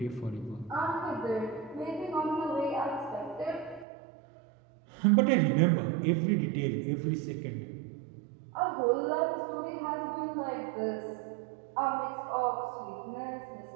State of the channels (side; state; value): left; drops out; at 3.9 s